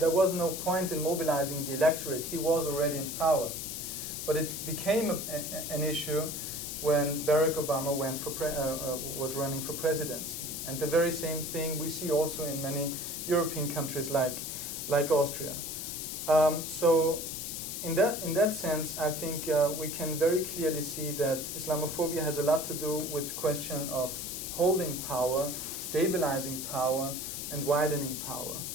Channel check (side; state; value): left; noise; hiss, 5 dB below the sound